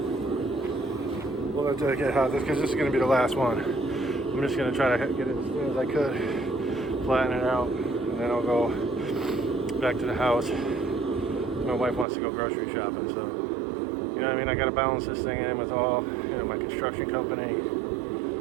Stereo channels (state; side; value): drops out; left; at 12.1 s